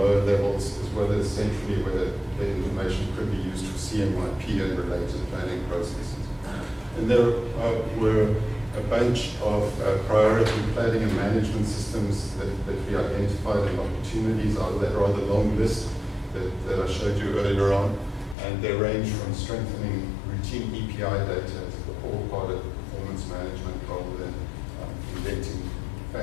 levels, as well as centrally, whether the information could be used for CMYP and related planning processes. And there were a bunch of priority planning and management systems that we identified, and opportunities out of that rather long list that I showed you earlier on. And they range from strengthening routine EPI data as the core part of performance management, rather than inventing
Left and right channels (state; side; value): drops out; right; at 18.4 s